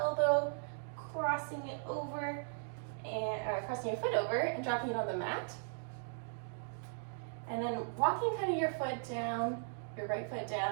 crossing it over, and crossing your foot over and dropping it on the mat. And then walking kind of your foot down, your right foot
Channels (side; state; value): left; silent; digital silence